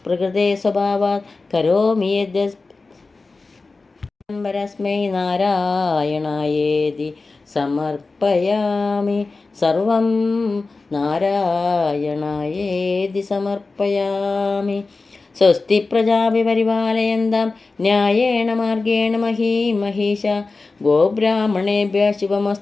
പ്രകൃതേ സ്വഭാവാത് കരോമി യദ്യസ്മൈ നാരായണായേതി സമർപ്പയാമി. സർവം നാരായണായേതി സമർപ്പയാമി. സ്വസ്തി പ്രജാഭി പരിപാലയന്താം ന്യായേണ മാർഗേണ മഹീമഹീഷ. ഗോബ്രാഹ്മണേഭ്യഃ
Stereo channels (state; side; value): quieter; right; 3.8 dB